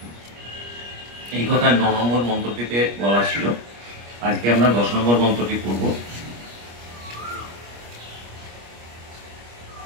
এই কথা 9 নম্বর মন্ত্রটিতে বলা ছিল। আজকে আমরা 10 নম্বর মন্ত্রটি পড়ব।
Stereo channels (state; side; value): late; left; 25 ms